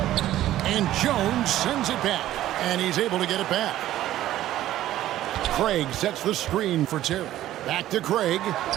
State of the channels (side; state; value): left; quieter; 13.7 dB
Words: And Jones sends it back, and he's able to get it back. Craig sets the screen for Terry. Back to Craig